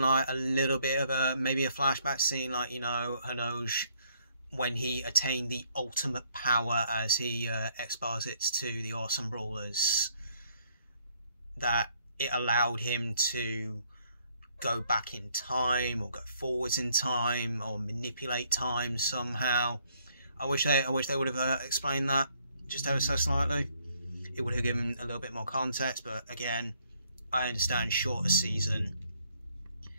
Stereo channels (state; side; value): inverted; both; correlation -0.67